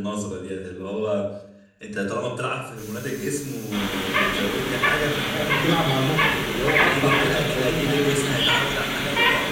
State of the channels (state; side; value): identical; both; correlation 1.00